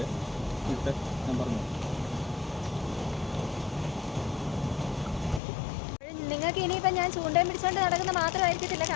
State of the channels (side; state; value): right; drops out; at 5.4 s